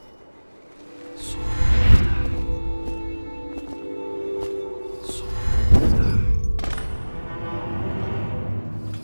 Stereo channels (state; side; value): inverted; both; correlation -1.00